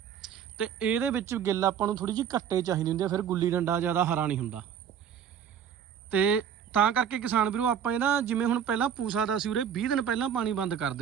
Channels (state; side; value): quieter; left; 8.5 dB